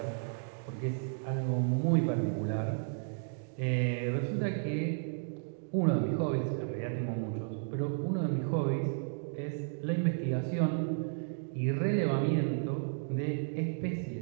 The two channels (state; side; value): silent; left; digital silence